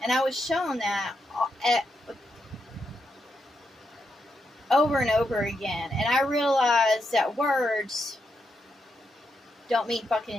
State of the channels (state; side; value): normal; both; correlation 0.83